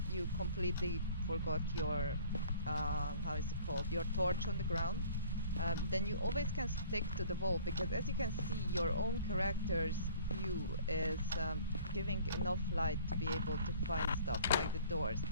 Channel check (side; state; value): both; inverted; correlation -0.52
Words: you completely forgot your, how is it called, your torch on the ground, then you always can stick to the wall, because as you can see, your own character's view is giving enough light to be able to find stuff like the doors.